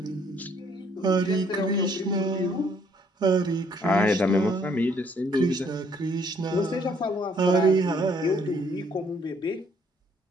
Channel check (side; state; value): both; normal; correlation 0.65